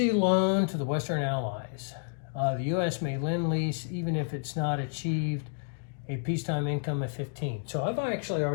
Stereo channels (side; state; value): right; silent; digital silence